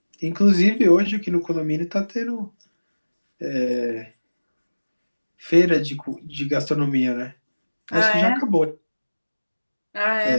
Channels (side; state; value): both; inverted; correlation -1.00